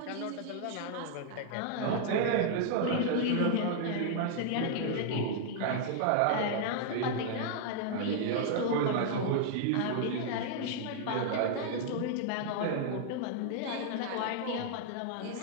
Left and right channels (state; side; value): different; both; correlation -0.01